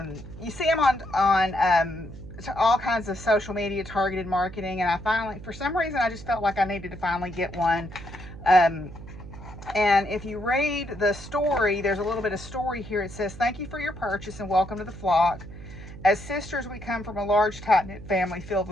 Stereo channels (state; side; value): noise; right; hum, 14 dB below the sound